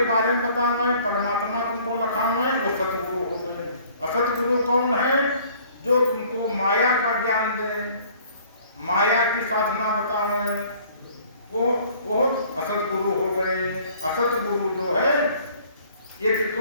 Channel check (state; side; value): inverted; both; correlation -0.55